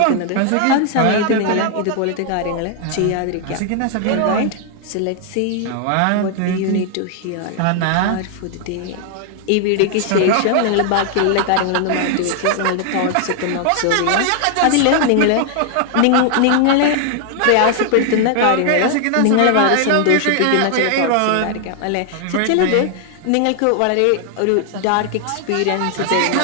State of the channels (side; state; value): both; different; correlation 0.00